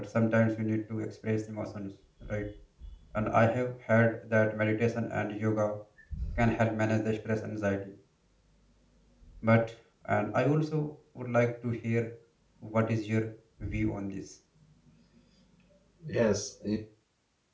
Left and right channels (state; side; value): identical; both; correlation 1.00